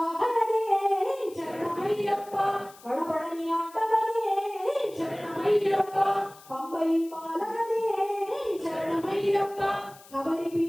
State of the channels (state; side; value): noise; left; hiss, 23 dB below the sound